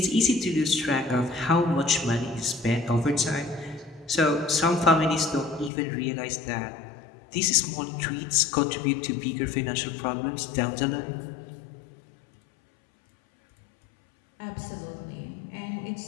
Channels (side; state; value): right; drops out; at 5.7 s